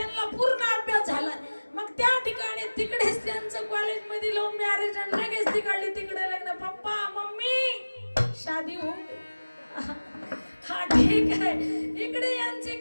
पूर्ण अभ्यास झाला. मग त्या ठिकाणी तिकडेच त्यांचं कॉलेजमध्ये लव्ह मॅरेज आणि लगेच तिकडले तिकडे लग्न. पप्पा मम्मी शादी हो ठीक आहे. इकडे यांचे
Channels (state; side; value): inverted; both; correlation -1.00